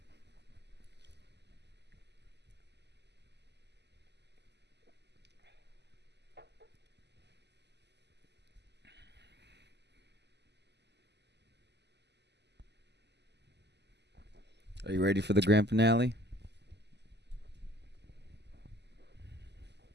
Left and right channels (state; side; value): late; left; 0.50 ms